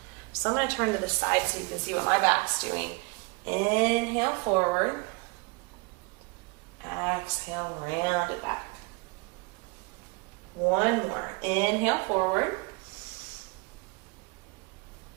So I'm going to turn to the side so you can see what my back's doing. Inhale, forward. Exhale, round it back. 1 more. Inhale, forward.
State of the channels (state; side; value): quieter; left; 28.2 dB